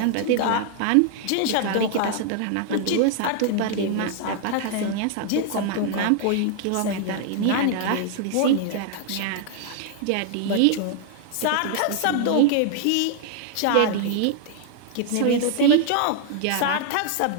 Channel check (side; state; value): both; different; correlation 0.00